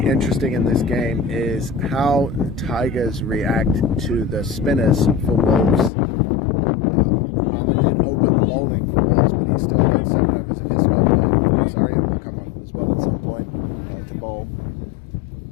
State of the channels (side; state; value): right; drops out; at 5.9 s